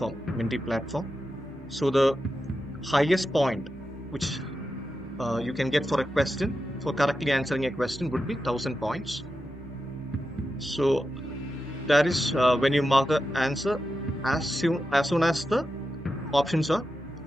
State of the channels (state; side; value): normal; both; correlation 0.90